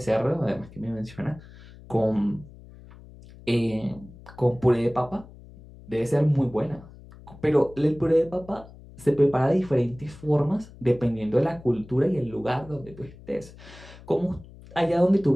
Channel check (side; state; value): left; noise; hum, 20 dB below the sound